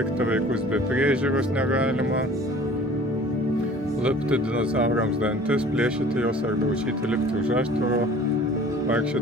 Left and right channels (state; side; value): normal; both; correlation 0.48